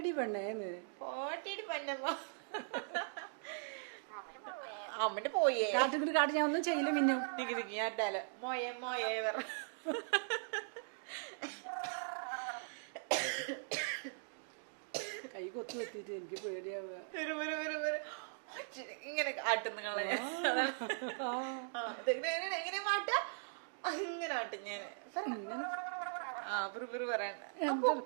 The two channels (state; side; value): silent; left; digital silence